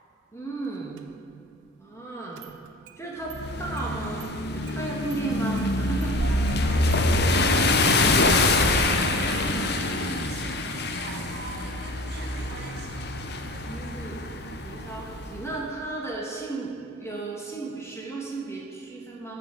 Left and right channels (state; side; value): normal; both; correlation 0.38